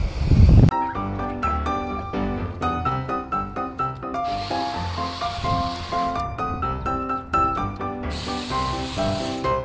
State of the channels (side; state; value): both; identical; correlation 1.00